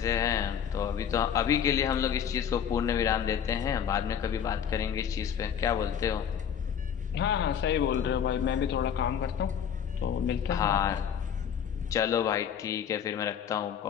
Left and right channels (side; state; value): right; quieter; 8.3 dB